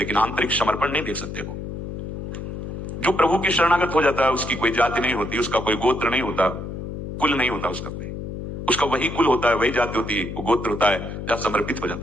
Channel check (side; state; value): left; noise; hum, 7 dB below the sound